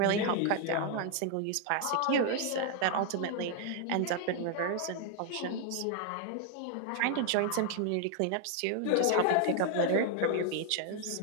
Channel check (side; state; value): both; different; correlation 0.00